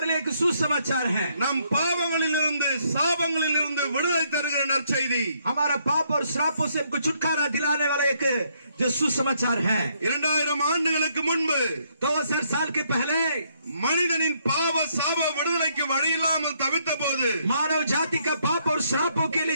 लिए एक सुसमाचार है. நம் பாவங்களிலிருந்து சாபங்களிலிருந்து விடுதலை தருகிற நற்செய்தி. हमारा पाप और श्रापों से हमको छुटकारा दिलाने वाला एक जो सुसमाचार है. 2000 ஆண்டுகளுக்கு முன்பு 2000 साल के पहले மனிதனின் பாவ சாப விடுதலைக்கு வழி இல்லாமல் தவித்த போது मानव जाति का पाप और श्रापों के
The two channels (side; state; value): both; inverted; correlation -0.71